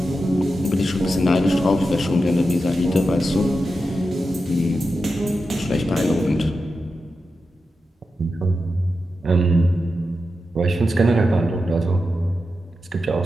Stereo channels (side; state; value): both; normal; correlation 0.90